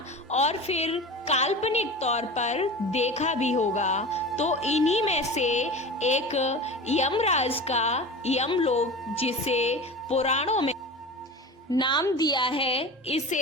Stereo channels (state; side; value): normal; both; correlation 0.32